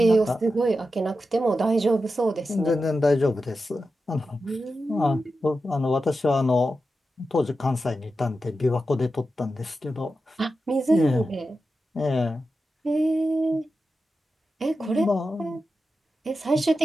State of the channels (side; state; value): both; normal; correlation 0.91